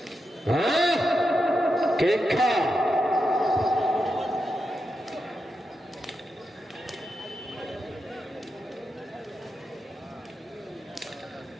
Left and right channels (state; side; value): normal; both; correlation 0.87